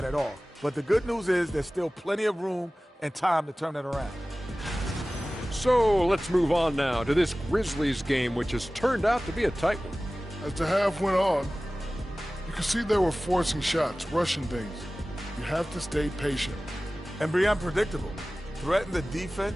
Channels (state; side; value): normal; both; correlation 0.97